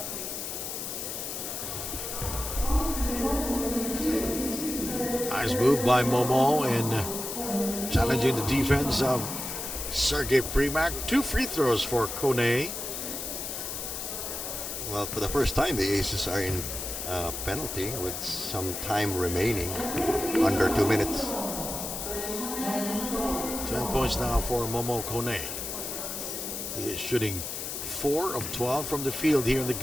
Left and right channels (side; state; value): left; noise; hiss, 5 dB below the sound